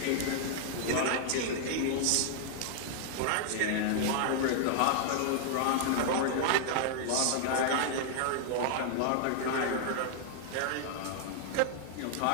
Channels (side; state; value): both; different; correlation -0.01